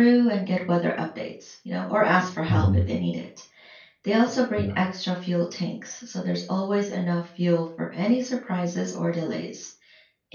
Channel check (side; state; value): both; identical; correlation 1.00